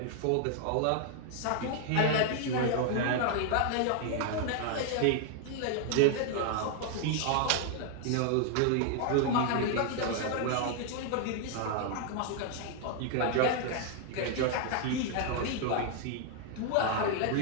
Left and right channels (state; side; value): different; both; correlation 0.00